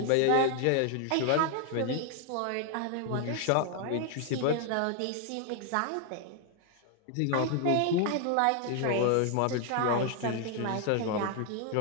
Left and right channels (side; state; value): both; different; correlation 0.00